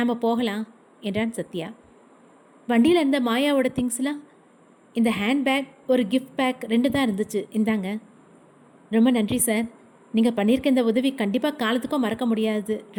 போகலாம் என்றான் சத்யா. வண்டியில் இருந்த மாயாவோட திங்ஸ்லாம்? இந்த ஹேண்ட்பேக், ஒரு கிஃப்ட் பேக் 2 தான் இருந்துச்சு. இந்தாங்க. ரொம்ப நன்றி சார். நீங்கள் பண்ணியிருக்க இந்த உதவி கண்டிப்பாக காலத்துக்கும் மறக்க முடியாது.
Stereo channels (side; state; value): both; identical; correlation 1.00